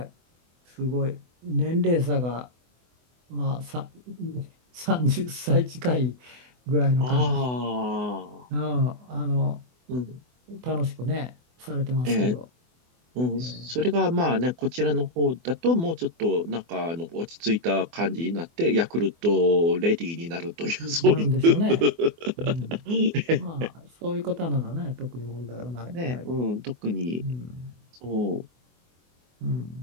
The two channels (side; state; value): left; late; 24 ms